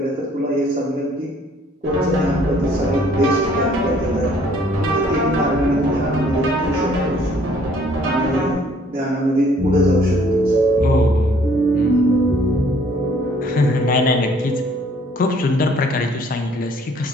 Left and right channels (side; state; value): both; normal; correlation 0.60